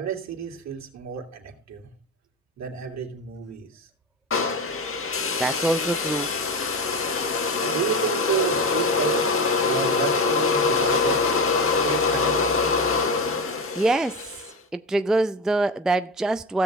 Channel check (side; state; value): both; normal; correlation 0.22